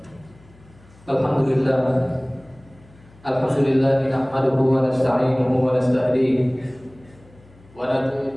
Alhamdulillah nahmaduhu wa nasta'inuhu wa nasta'dihi wa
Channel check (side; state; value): left; noise; hum, 26 dB below the sound